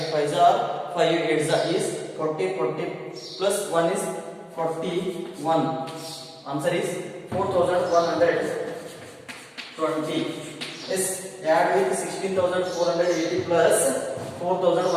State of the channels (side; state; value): both; identical; correlation 1.00